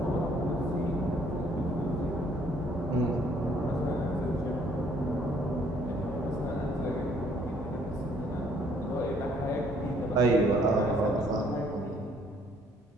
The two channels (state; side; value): normal; both; correlation 0.63